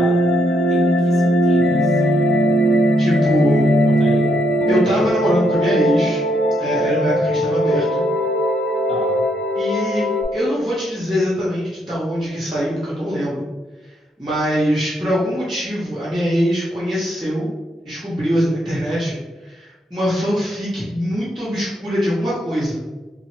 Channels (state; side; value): normal; both; correlation 0.76